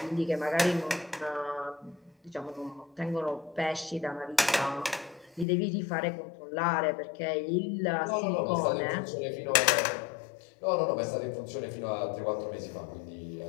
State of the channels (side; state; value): right; drops out; at 5.5 s